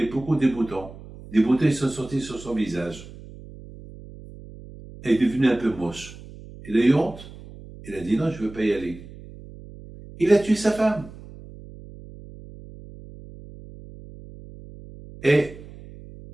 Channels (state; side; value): noise; right; hum, 17 dB below the sound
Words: beaucoup de boutons. Des boutons, ils sont sortis sur son visage. Elle est devenue un peu moche. Il a eu honte. Il a dit non, je ne veux pas y aller. Il a tué sa femme. Et